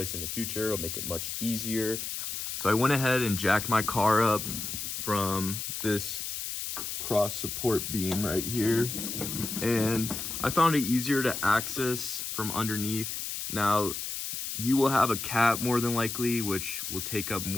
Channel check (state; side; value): noise; left; hiss, 5 dB below the sound